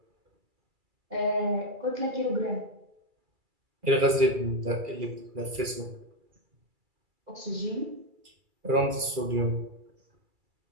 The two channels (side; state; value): left; late; 2.4 ms